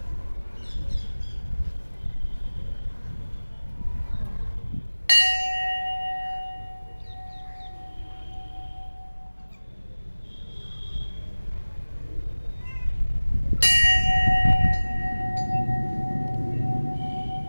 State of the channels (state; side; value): inverted; both; correlation -1.00